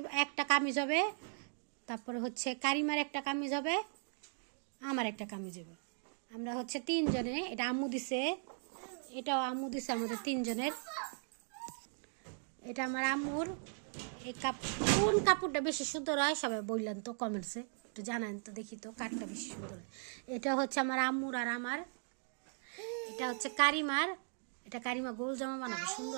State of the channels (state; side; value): silent; left; 52 dB below the other